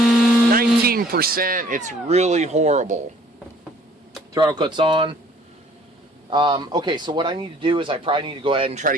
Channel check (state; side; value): normal; both; correlation 0.56